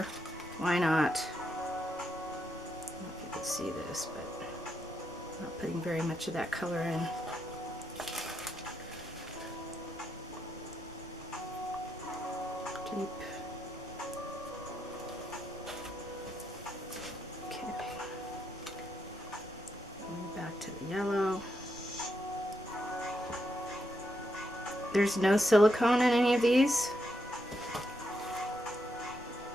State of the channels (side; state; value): left; noise; rumble, 24 dB below the sound